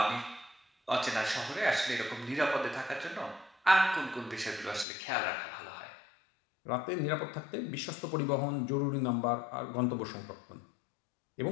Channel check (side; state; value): right; drops out; at 4.9 s